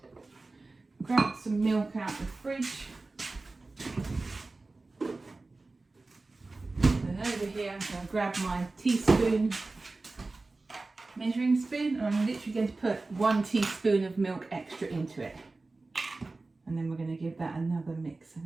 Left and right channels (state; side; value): quieter; left; 3.4 dB